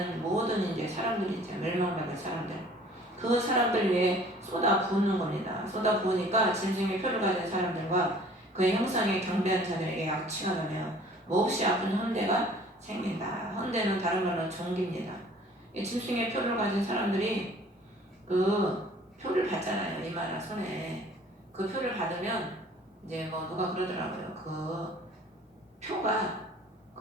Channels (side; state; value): both; normal; correlation 0.52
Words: 모든 이제 사람들이죠. 멸망받을 사람들. 그 사람들 위에 쏟아 부는 겁니다. 쏟아 부으니까 짐승의 표를 가진 사람들과 그의 형상에 경배하는 자들에게 악취가 나며 몹시 아픈 헌대가 생긴다. 헌대는 다른 말로 종기입니다. 짐승의 표를 가진 사람들이 그 표를 받잖아요. 이마나 손에. 그 표를 받으면 이제 뭐 누가 그러더라고요. 그 표가